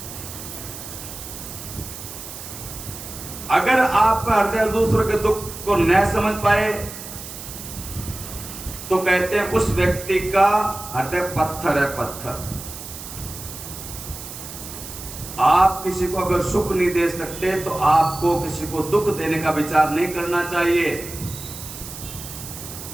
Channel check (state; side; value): noise; right; hiss, 11 dB below the sound